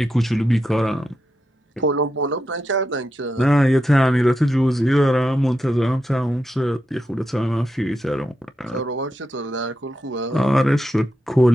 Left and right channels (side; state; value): both; normal; correlation 0.86